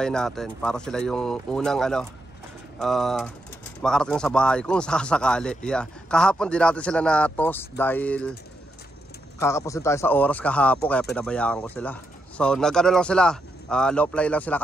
natin, para sila yung unang makarating sa bahay kung sakasakali. Yeah. Kahapon din natin sila na-toss dahil kakapusin tayo sa oras kahapon, kaya pinabayaan ko sila. So nag-ano lang sila, low fly lang sila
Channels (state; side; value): normal; both; correlation 0.82